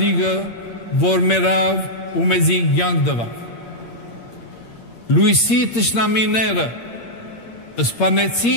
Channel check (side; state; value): right; late; 8.6 ms